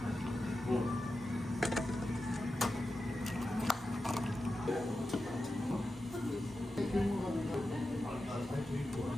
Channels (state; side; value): normal; both; correlation 0.91